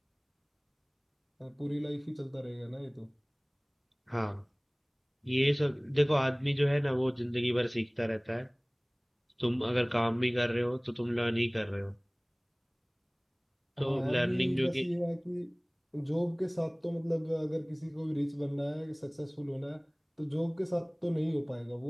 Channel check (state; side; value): identical; both; correlation 1.00